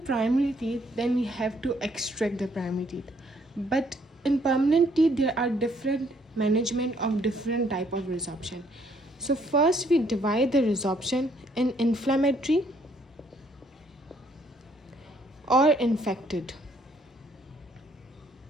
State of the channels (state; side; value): normal; both; correlation 0.67